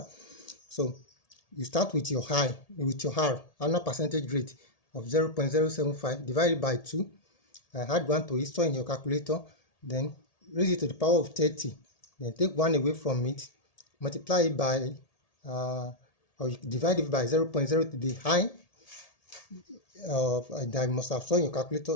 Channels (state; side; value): late; right; 1.8 ms